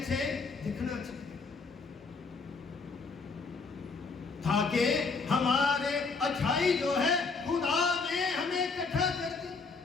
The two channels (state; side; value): quieter; right; 4.5 dB